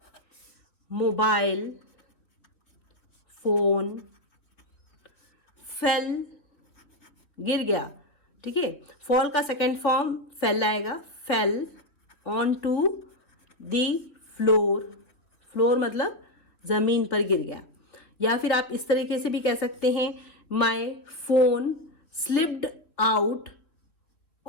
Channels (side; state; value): right; late; 3.0 ms